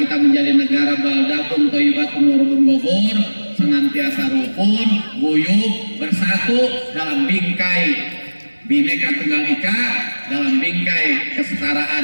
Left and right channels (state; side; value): inverted; both; correlation -1.00